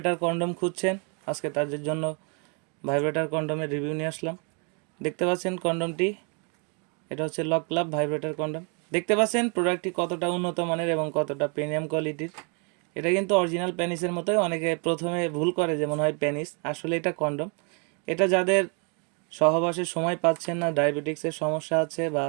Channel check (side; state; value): left; quieter; 36.9 dB